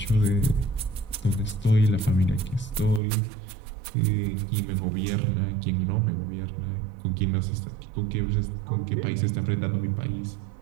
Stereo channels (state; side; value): drops out; left; at 3.0 s